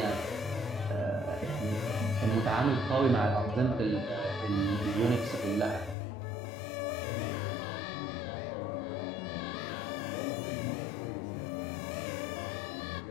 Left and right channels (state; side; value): drops out; right; at 6.0 s